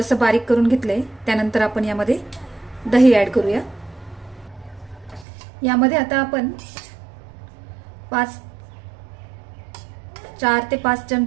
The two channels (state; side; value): drops out; left; at 5.2 s